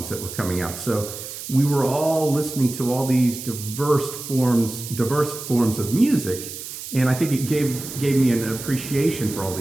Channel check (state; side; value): noise; right; hiss, 10 dB below the sound